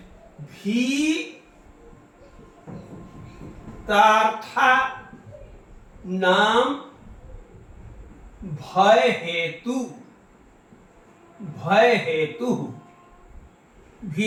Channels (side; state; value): both; identical; correlation 1.00